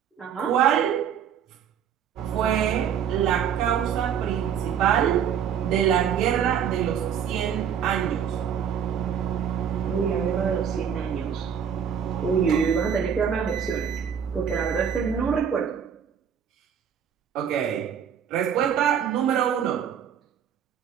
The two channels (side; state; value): left; quieter; 8.2 dB